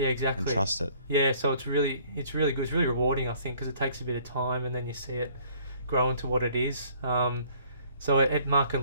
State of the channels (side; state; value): both; inverted; correlation -0.58